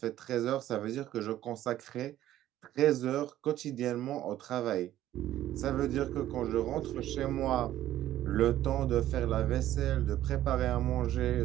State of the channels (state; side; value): quieter; left; 13.2 dB